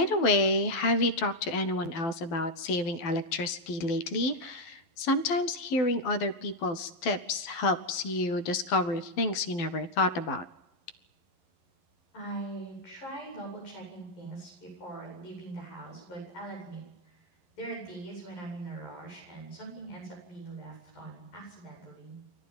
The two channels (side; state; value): right; late; 11 ms